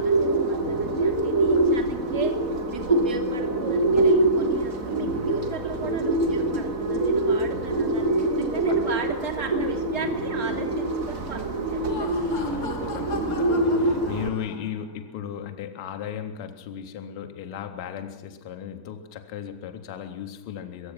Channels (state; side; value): late; right; 4.0 ms